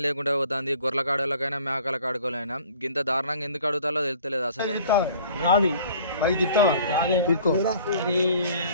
లేకుండా పోతుంది. గొర్రెల కాడలకైనా మేకల కాడుకోలైనా ఇంత దారుణంగా ఎందుకు అడుగుతారో తెలుస్తలేదు అసలు.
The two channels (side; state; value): both; inverted; correlation -0.51